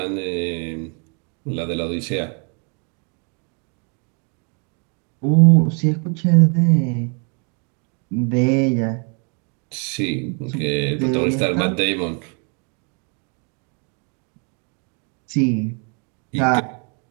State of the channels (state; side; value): quieter; left; 37.1 dB